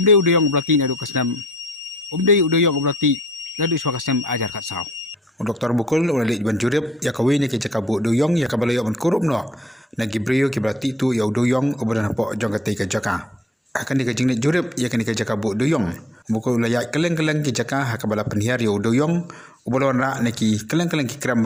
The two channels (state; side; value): normal; both; correlation 0.63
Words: oblati nadu kasnam Dewiong oblati nadu swa kasnam ajar kat saw Dr. Mukul ulali ban jurip ya kawini ke jakabu Dewiong ya kabalayo ban kurup no na gibrio ki berarti tu ya Dewiong obran hapo jong kate ke jaka akan dikajing ni jurip ya kan dikajabu Dewiong Mukul layak keleng-keleng ki jaka hakabala penhiar ya Dewiong ubalon ra neki keleng-keleng ki kram